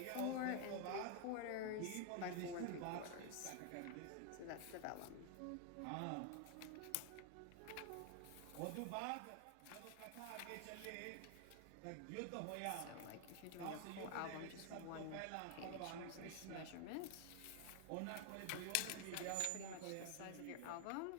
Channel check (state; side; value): different; both; correlation 0.00